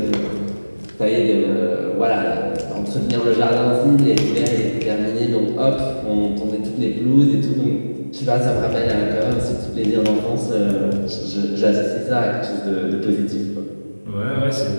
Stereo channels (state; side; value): inverted; both; correlation -1.00